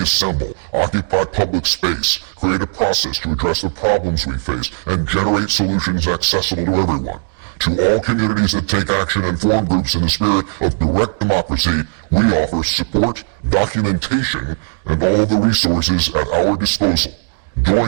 assemble, occupy public space, create a process to address the problems we face, and generate solutions accessible to everyone. To all communities that take action and form groups in the spirit of direct democracy, we offer support, documentation, and all of the resources at our disposal.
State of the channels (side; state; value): left; silent; digital silence